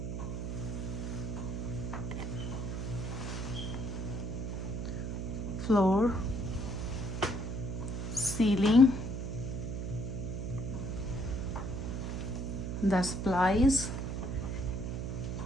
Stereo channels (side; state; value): right; noise; hum, 3 dB below the sound